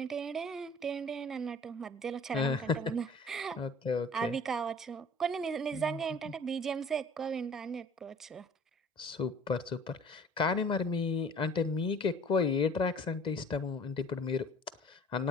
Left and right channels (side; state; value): both; normal; correlation 0.49